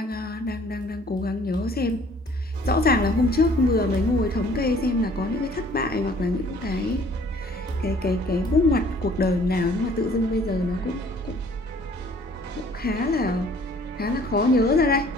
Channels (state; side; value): normal; both; correlation 0.56